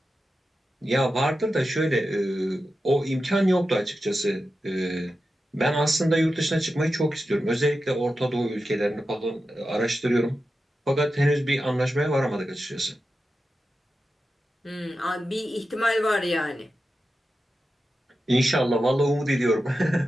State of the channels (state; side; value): normal; both; correlation 0.91